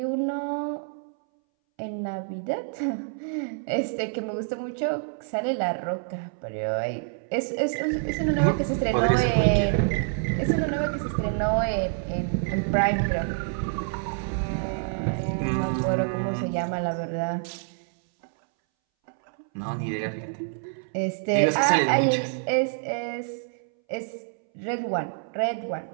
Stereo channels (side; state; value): left; silent; 60 dB below the other